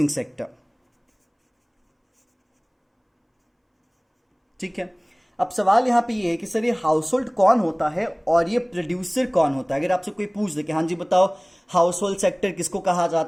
सेक्टर, ठीक है। अब सवाल यहां पे ये है कि सर ये हाउस होल्ड कौन होता है और ये प्रोड्यूसर कौन होता है। अगर आपसे कोई पूछ दे कि हाँ जी बताओ हाउस होल्ड सेक्टर किसको कहा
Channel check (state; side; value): identical; both; correlation 1.00